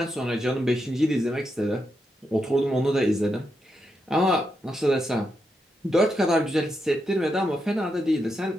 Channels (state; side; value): normal; both; correlation 0.84